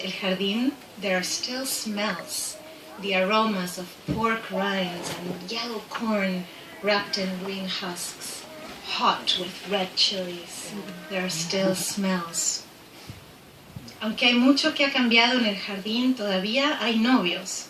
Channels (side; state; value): both; identical; correlation 1.00